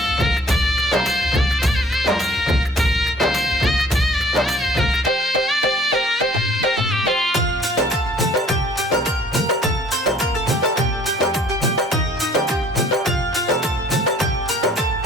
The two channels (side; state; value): both; normal; correlation 0.55